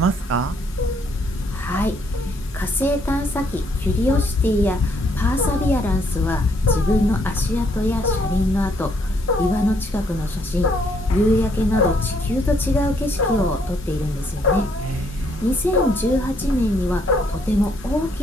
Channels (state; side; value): normal; both; correlation 0.69